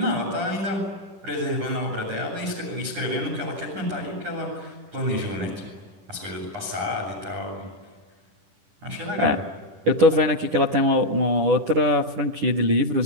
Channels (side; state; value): left; late; 10 ms